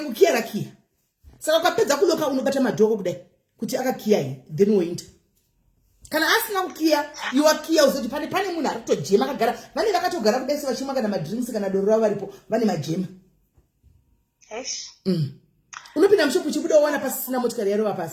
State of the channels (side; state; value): both; identical; correlation 1.00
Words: rakiya saka ukapedza kuloka unobata madhoko kudai kuti akakiya here then woinda kana asina kukiya iwakiya uzoti pane munhu ari kutojema akagara vane vakatogara kudai sevachimwa kana madrinks kana doro ravo varipo vane majema unopinda mushopu uchibuda uwana pasisina motikari yarova